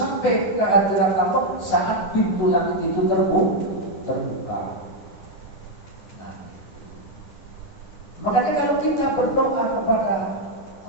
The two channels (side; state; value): right; late; 10 ms